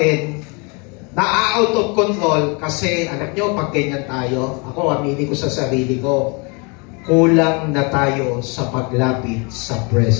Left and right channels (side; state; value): right; quieter; 31.5 dB